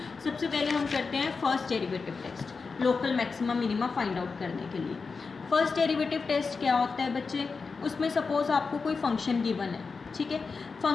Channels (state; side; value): quieter; right; 4.7 dB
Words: सबसे पहले हम करते हैं first derivative test local maxima minima find out करने के लिए। फर्स्ट डेरिवेटिव टेस्ट क्या होता है बच्चे, उसमें सपोज आपको कोई फंक्शन गिवन है, ठीक है।